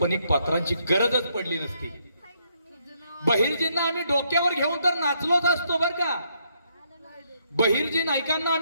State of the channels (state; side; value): inverted; both; correlation -0.74